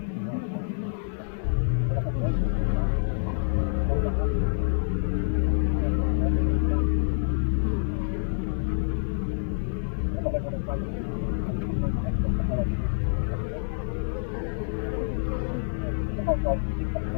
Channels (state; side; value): silent; right; 60 dB below the other